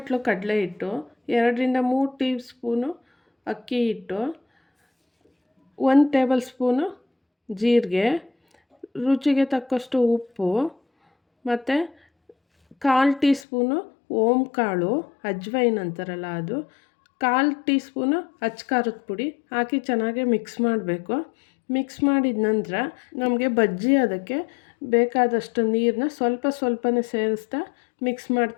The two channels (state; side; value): drops out; right; at 13.5 s